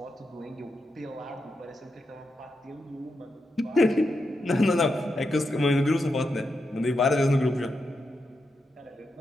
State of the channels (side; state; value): both; normal; correlation 0.85